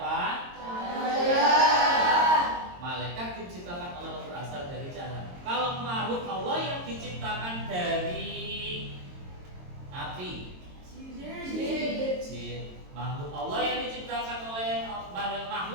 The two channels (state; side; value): late; left; 22 ms